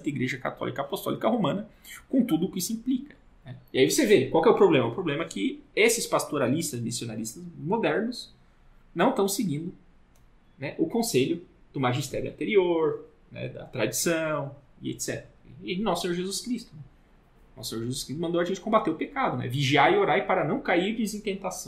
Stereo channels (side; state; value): both; identical; correlation 1.00